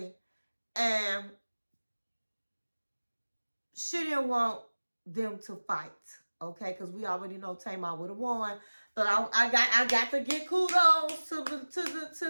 And she didn't want them to fight. okay? Because we already know Tamar would have won. But I got to get kudos to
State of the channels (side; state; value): both; inverted; correlation -1.00